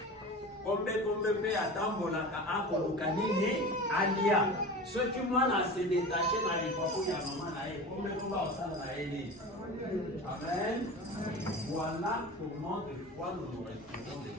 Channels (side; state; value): both; normal; correlation 0.33